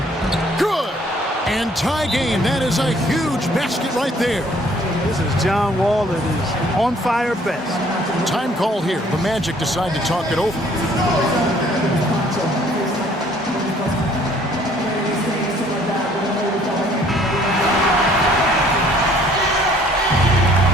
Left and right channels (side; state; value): both; normal; correlation 0.59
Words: Good. And tie game. That is a huge basket right there. This is John Wall that is on fire best. Time call here. The Magic decide to talk it over.